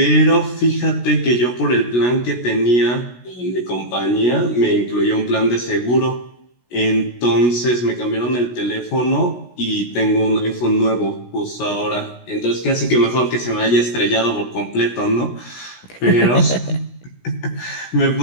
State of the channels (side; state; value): right; late; 16 ms